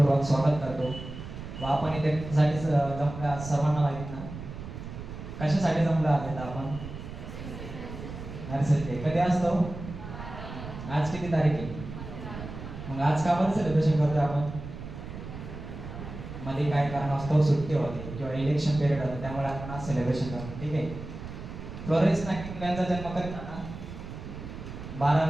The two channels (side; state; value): right; noise; rumble, 10 dB below the sound